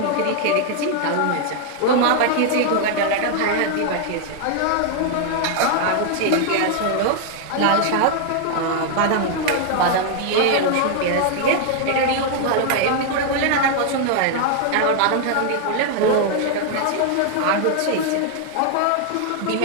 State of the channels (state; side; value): different; both; correlation 0.00